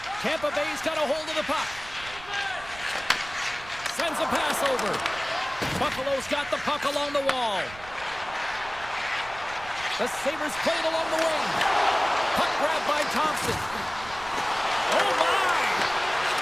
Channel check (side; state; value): right; noise; rumble, 18 dB below the sound